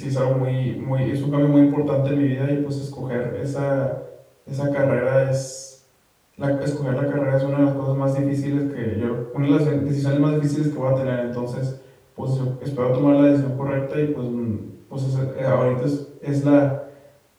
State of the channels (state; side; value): identical; both; correlation 1.00